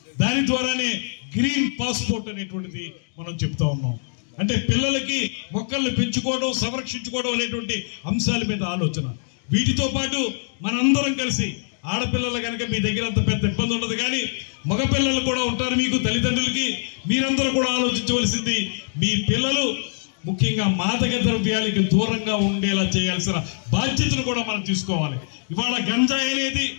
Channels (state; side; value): silent; right; digital silence